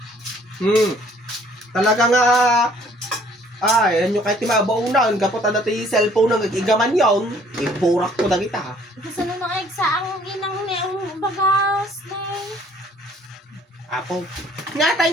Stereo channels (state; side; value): normal; both; correlation 0.59